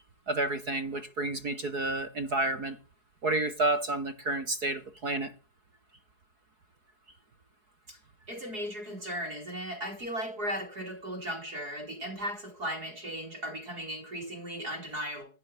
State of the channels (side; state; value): left; late; 4.7 ms